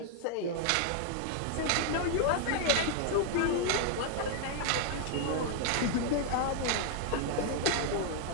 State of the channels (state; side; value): different; both; correlation 0.00